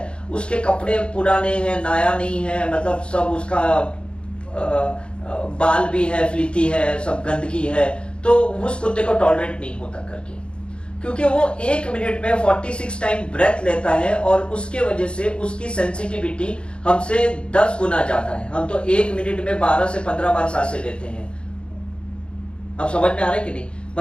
उसके कपड़े पुराने हैं, नया नहीं है, मतलब सब उसका बाल भी है, फ्लीती है, सब गंदगी है, तो उस कुत्ते को टॉलरेट नहीं होता करके, क्योंकि वो 1 मिनट में 46 टाइम ब्रेथ लेता है और उसके वजह से उसकी सेंसिटिविटी हमसे 10 गुना ज्यादा है। हम तो 1 मिनट में 12 से 15 बार सांसें लेते हैं। अब समझ में आ रहा है कि नहीं?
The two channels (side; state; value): right; late; 0.056 ms